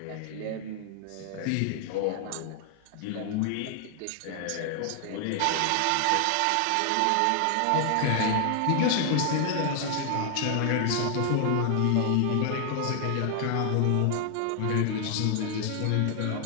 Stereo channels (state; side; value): different; both; correlation 0.00